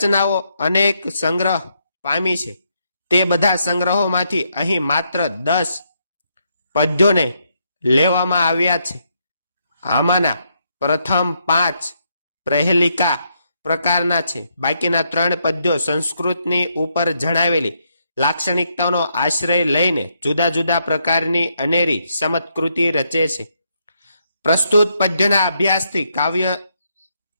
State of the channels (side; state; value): both; inverted; correlation -0.77